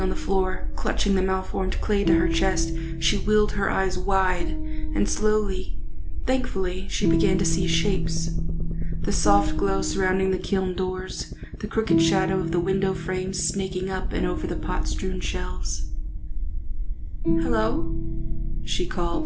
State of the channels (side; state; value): both; identical; correlation 1.00